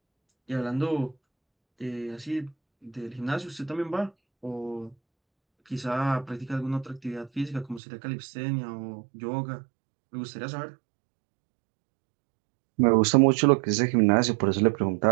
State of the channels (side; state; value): left; drops out; at 7.8 s